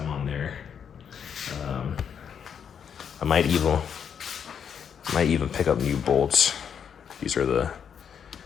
on there. I might even pick up new bolts. These are the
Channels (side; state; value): right; quieter; 7.7 dB